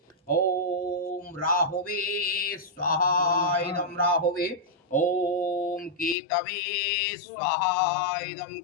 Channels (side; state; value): right; drops out; at 6.2 s